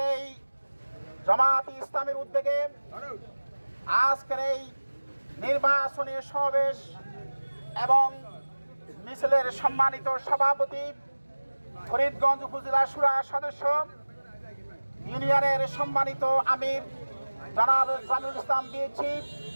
এই জামাত ইসলামের উদ্যোগে আজকের এই নির্বাচনী সমাবেশ এবং মিছিলের সম্মানিত সভাপতি, ফরিদগঞ্জ উপজেলা শুরা সদস্য, ইউনিয়নের সম্মানিত আমির জনাব জামিউল ইসলাম বিএচি,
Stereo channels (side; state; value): both; inverted; correlation -1.00